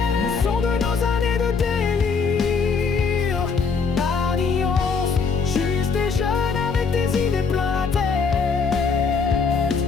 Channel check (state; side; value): quieter; right; 5.3 dB